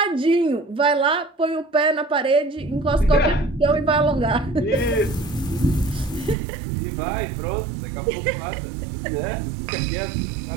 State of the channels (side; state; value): left; drops out; at 6.4 s